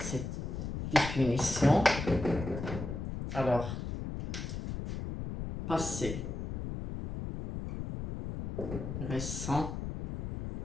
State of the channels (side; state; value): left; noise; rumble, 5 dB below the sound